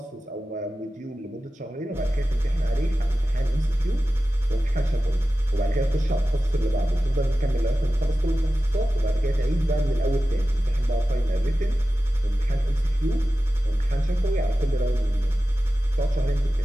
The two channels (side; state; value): both; normal; correlation 0.94